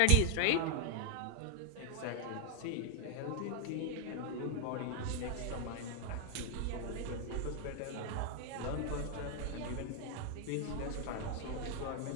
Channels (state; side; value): different; both; correlation 0.00